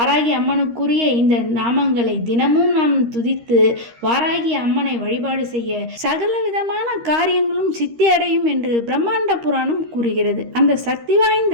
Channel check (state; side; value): late; left; 13 ms